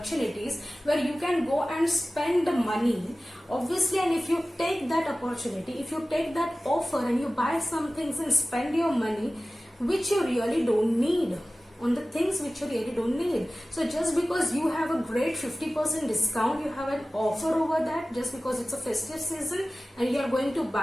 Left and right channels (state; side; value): normal; both; correlation 0.97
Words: where you can go and spend the money, obviously, and if you take that opportunity, if you take that offer and you buy some things and spend your money which you really don't need, on the things which you really don't need. So just because you have a great 50% discount, you have an offer over that, just because it's a festive season and you are going to